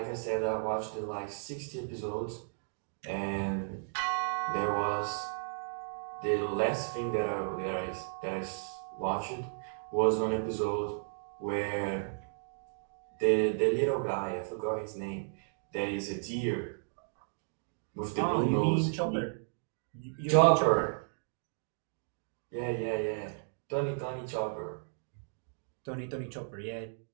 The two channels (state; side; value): silent; left; digital silence